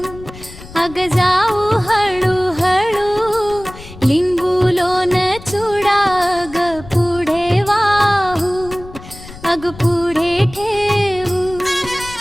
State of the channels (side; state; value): left; noise; rumble, 16 dB below the sound